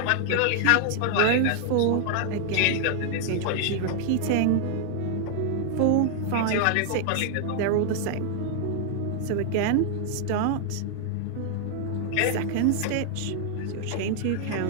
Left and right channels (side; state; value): both; different; correlation 0.00